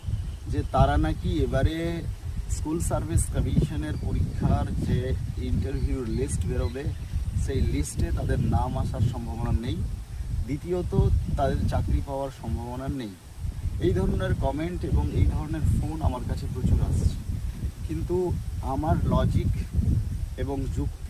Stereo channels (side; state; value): both; identical; correlation 1.00